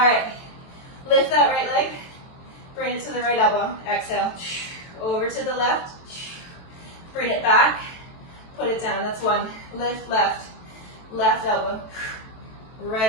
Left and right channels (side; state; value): right; late; 23 ms